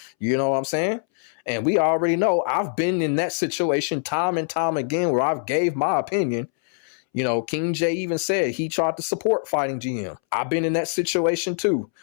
You know what I'm saying? And we already know I've been in that situation time and time again where I've gave my opinion. King Jae even said he tried to support FightingGM. I've been in that situation too,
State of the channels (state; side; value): silent; right; 63 dB below the other